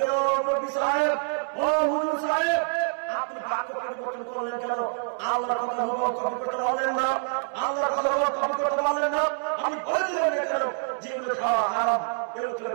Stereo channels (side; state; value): left; silent; digital silence